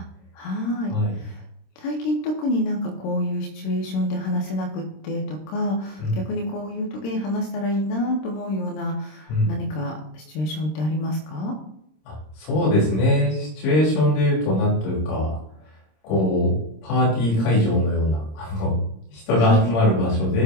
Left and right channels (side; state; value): right; late; 26 ms